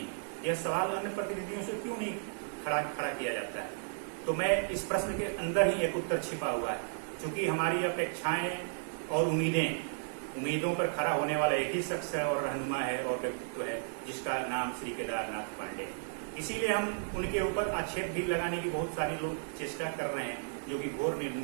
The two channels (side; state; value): left; silent; digital silence